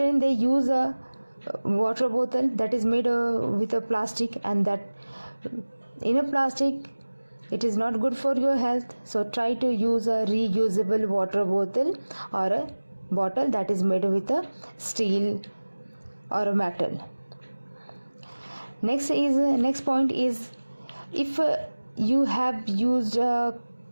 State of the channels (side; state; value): both; inverted; correlation -1.00